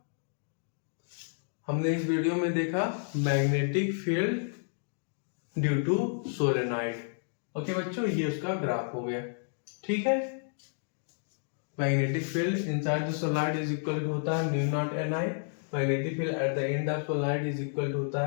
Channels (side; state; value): right; silent; digital silence